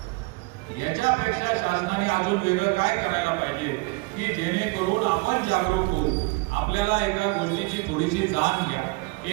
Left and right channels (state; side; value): quieter; left; 26.3 dB